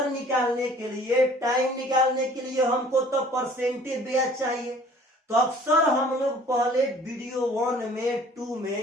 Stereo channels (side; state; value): both; normal; correlation 0.52